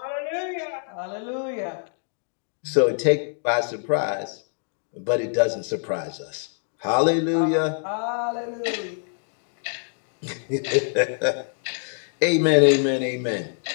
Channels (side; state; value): right; silent; digital silence